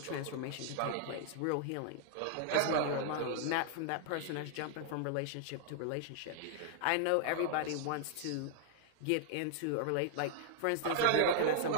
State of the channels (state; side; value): different; both; correlation -0.01